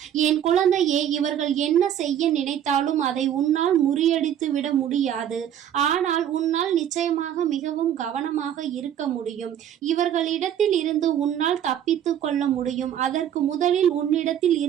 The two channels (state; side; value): quieter; left; 10.1 dB